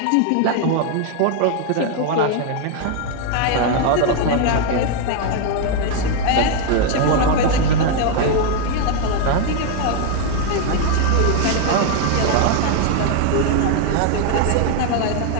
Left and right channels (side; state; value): both; different; correlation 0.01